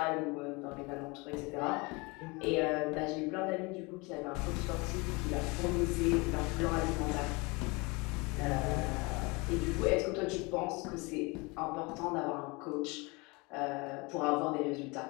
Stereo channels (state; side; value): quieter; right; 26.7 dB